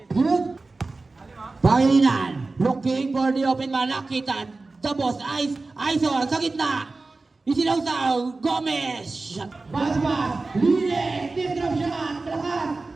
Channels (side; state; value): left; quieter; 3.5 dB